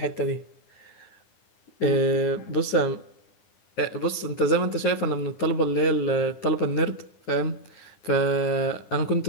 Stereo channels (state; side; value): late; right; 9.7 ms